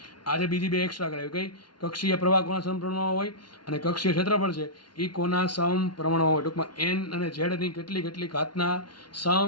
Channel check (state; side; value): late; right; 0.71 ms